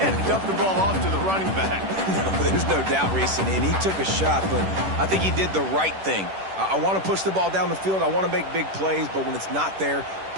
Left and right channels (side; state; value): left; late; 10 ms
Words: dumped the ball off to the running back. No, there's no doubt, Reese, and he took a shot, but I think he did the right thing. I want to push the ball down the field. I want to make big plays, but when it's not there,